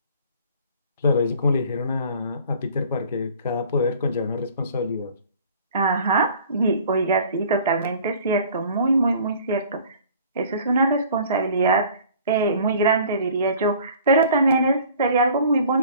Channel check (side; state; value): both; inverted; correlation -0.50